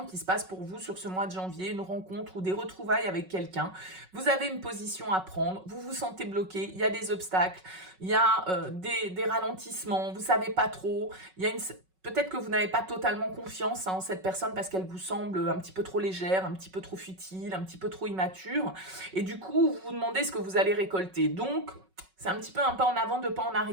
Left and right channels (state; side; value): late; left; 5.4 ms